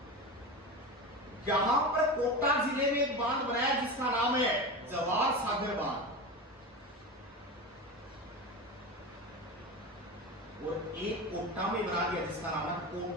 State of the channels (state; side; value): normal; both; correlation 0.25